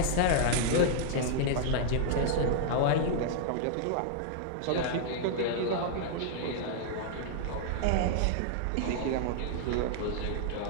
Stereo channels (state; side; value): different; both; correlation -0.01